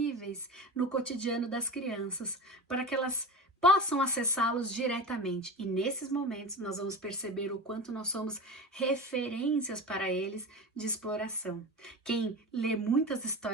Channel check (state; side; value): normal; both; correlation 0.29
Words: no cotidiano das crianças, para que elas possam acessá-los diretamente. E nesses momentos nós vamos perceber o quanto nós somos referências para eles de exploração. Quem lê muitas